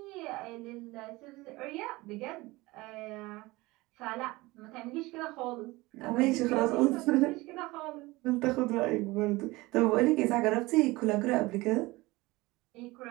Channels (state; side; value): quieter; left; 21.2 dB